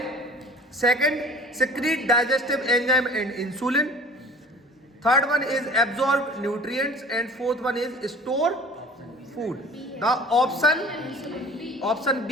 second secrete digestive enzyme and insulin, third one is absorb nutrients and fourth one is store food. The option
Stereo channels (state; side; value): normal; both; correlation 0.46